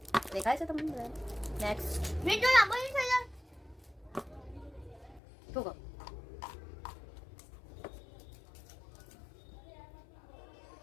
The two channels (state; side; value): drops out; right; at 5.2 s